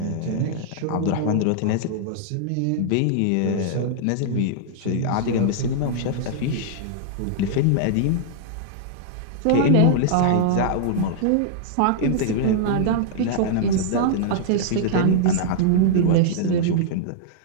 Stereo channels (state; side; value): different; both; correlation -0.01